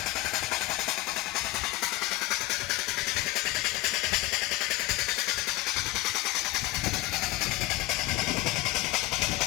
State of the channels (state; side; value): quieter; right; 18.7 dB